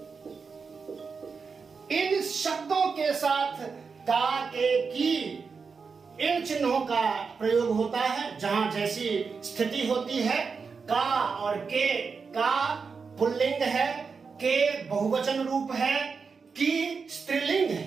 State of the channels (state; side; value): quieter; left; 5.2 dB